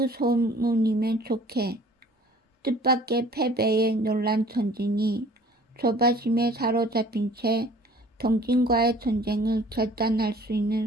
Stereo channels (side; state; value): both; normal; correlation 0.51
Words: 소문이면 좋게. 뜻밖의 패배에 놀란 전진이 조바심에 사로잡힌 채 동진과의 전쟁을 결단할 수